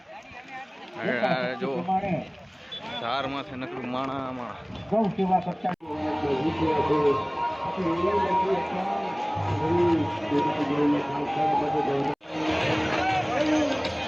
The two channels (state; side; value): identical; both; correlation 1.00